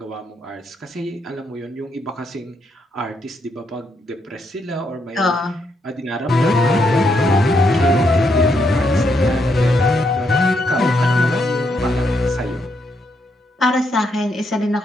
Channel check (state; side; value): normal; both; correlation 0.77